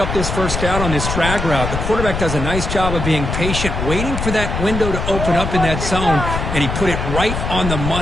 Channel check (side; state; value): left; noise; rumble, 3 dB below the sound